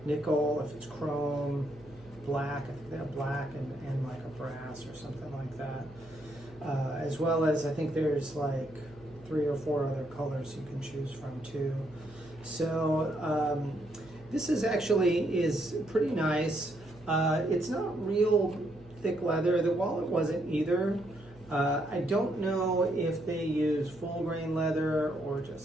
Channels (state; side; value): noise; right; hum, 23 dB below the sound